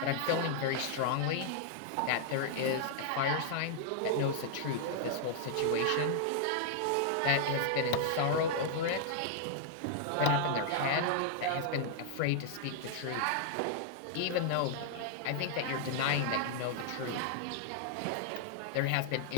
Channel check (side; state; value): both; different; correlation -0.01